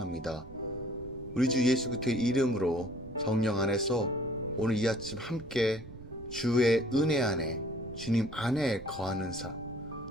우리 주 예수 그리스도의 이름으로 성령 안에서 오늘 이 아침 함께 주의 은혜 안에 주님 안에 거하는 삶,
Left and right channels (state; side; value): noise; right; rumble, 16 dB below the sound